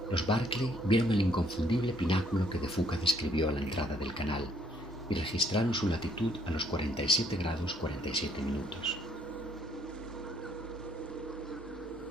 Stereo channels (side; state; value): both; normal; correlation 0.65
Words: Los Barclay vieron el inconfundible pináculo que de Fuca describió a la entrada del canal y registraron su latitud a los 47 grados 47 minutos.